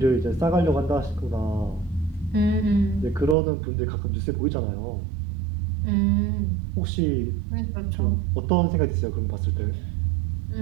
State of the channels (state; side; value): drops out; left; at 3.4 s